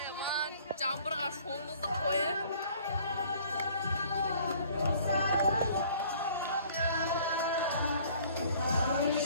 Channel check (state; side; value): inverted; both; correlation -0.54